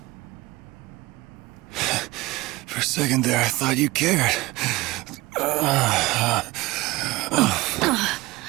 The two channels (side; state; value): left; quieter; 20.6 dB